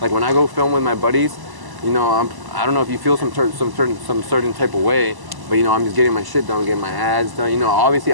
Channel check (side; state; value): left; late; 1.0 ms